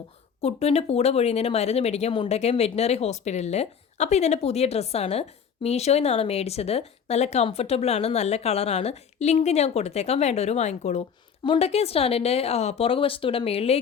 കുട്ടുവിൻ്റെ പൂട പൊഴിയുന്നതിന് മരുന്ന് മേടിക്കാൻ മുണ്ടക്കയം വെറ്റിനറി ഹോസ്പിറ്റലിൽ. അപ്പോൾ ഇതെൻ്റെ പുതിയ ഡ്രസ്സാണ്. മീഷോയിൽ നിന്നാണ് മേടിച്ചത്. നല്ല കംഫർട്ടബിളാണ്, നല്ല കളറാണ്. ലിങ്ക് ഞാൻ കൊടുത്തേക്കാം, വേണ്ടവർ വാങ്ങിക്കോളൂ. മുണ്ടക്കയം സ്റ്റാൻഡിൻ്റെ പുറകുവശത്തൂടെ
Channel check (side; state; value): right; quieter; 7.1 dB